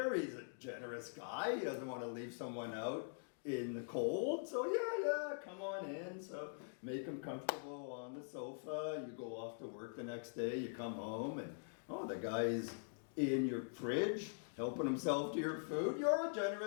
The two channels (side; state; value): right; silent; digital silence